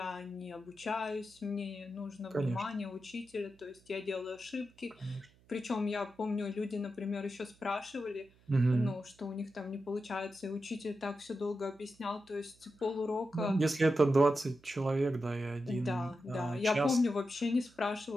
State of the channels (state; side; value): noise; right; hum, 29 dB below the sound